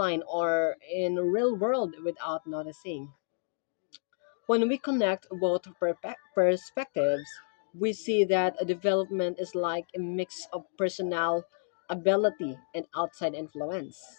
or in real world without noticing. When we connect both perspectives, we see that a development is like a mix of personal ability and outside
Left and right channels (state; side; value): silent; right; digital silence